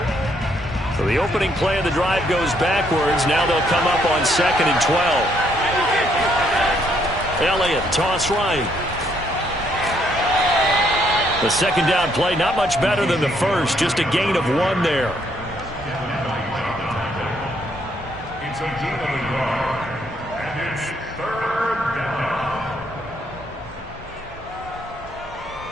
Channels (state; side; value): normal; both; correlation 0.71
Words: So the opening play of the drive goes backwards. Now they'll come up on 2nd and 12. Elliott, toss right. The second down play, not much better than the first. Just a gain of 1 there. It's a gain of 1 yard, and it's 3rd down.